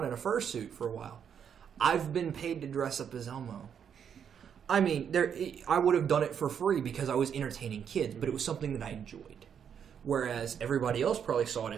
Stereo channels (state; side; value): quieter; left; 8.0 dB